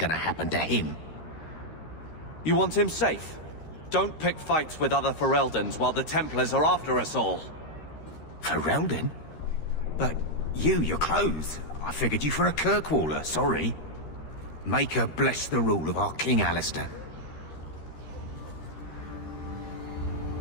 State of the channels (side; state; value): right; late; 13 ms